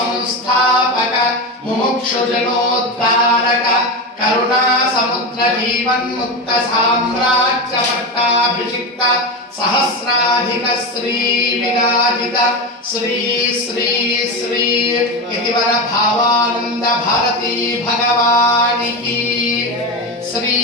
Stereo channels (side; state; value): both; normal; correlation 0.19